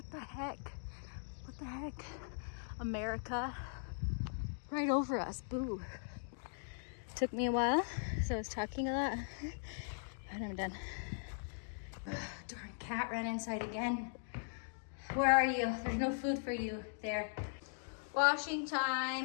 the heck? What the heck? America right over us. Boo. Took me a while, so I was talking a lot, but I'm done. Darn cat ran inside again. Where are you? There's no food for you there. Washing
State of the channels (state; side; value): silent; right; digital silence